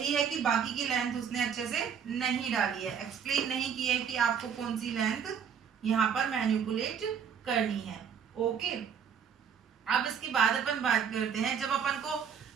है कि बाकी की लेंथ उसने अच्छे से नहीं डाली है, एक्सप्लेन नहीं किया है कि आपको कौन सी लेंथ यहाँ पर मैनिपुलेट करनी है। ओके, अब इसके बाद अपन बात करते हैं, जब अपन को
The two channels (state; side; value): quieter; left; 7.5 dB